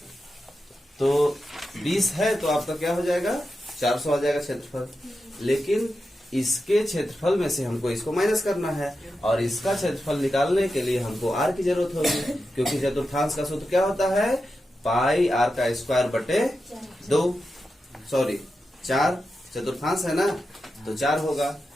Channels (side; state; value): both; normal; correlation 0.90